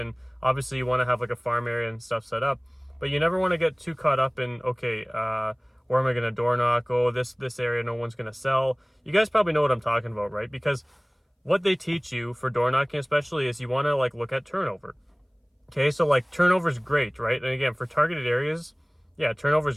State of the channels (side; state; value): both; identical; correlation 1.00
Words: obviously you want to have a farm area and stuff set up, but you never want to get too caught up in, okay, where am I going to door knock? Oh, this area no one's going to sell. You guys probably know what I'm talking about, right? Because what they teach you for door knocking especially is you want to look at turnover. Okay, so turnover is great, right? And again, for targeted areas, yeah, turnover